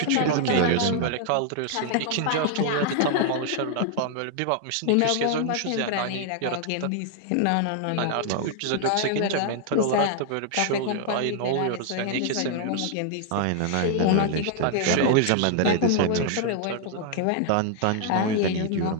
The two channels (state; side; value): different; both; correlation 0.00